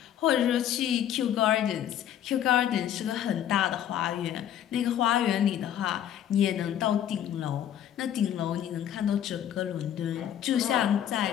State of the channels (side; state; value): right; quieter; 10.4 dB